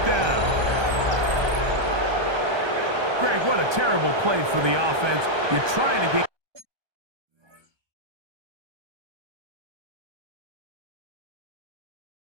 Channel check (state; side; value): late; left; 1.2 ms